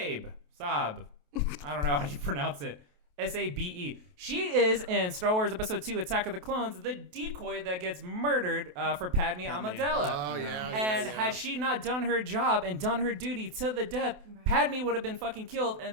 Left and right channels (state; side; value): late; left; 28 ms